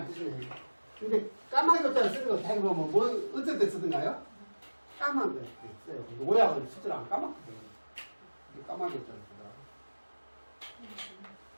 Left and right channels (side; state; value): both; inverted; correlation -1.00